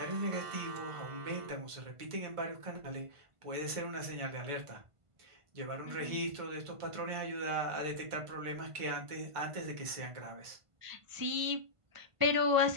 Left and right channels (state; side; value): late; left; 1.5 ms